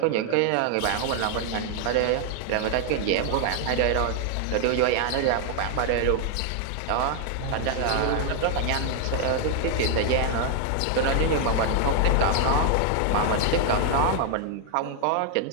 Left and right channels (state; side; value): different; both; correlation 0.00